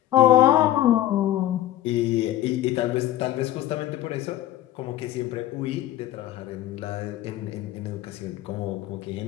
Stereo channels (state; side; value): quieter; right; 13.4 dB